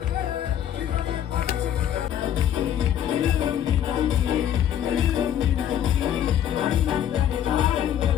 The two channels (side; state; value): right; quieter; 10.2 dB